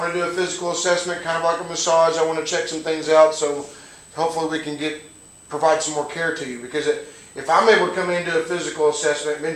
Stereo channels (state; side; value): identical; both; correlation 1.00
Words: to do a physical assessment, kind of like a massage. I want to check some things out, so hopefully we can provide some more care to you. Because if I'm able to come into a physical assessment, been